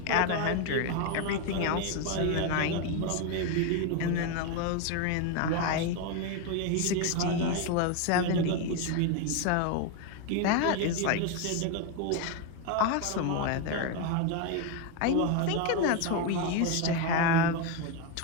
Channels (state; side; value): different; both; correlation 0.02